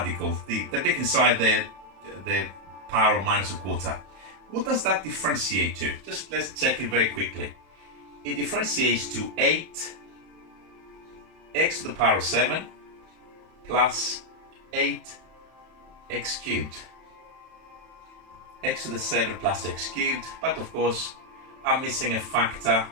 the bit inside the power of minus a quarter. What does that differentiate to? Just let's check it very quickly. It differentiates to 8 x to the power of 7 plus 8 x cubed. X to the 7 plus x cubed, but of course I'm missing a factor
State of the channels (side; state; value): left; late; 32 ms